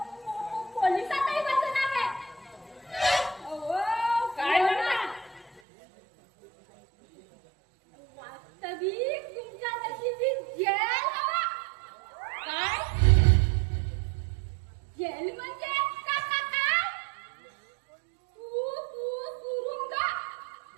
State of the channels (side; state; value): left; drops out; at 5.6 s